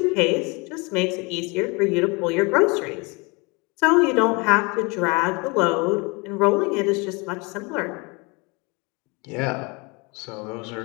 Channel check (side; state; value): right; quieter; 28.2 dB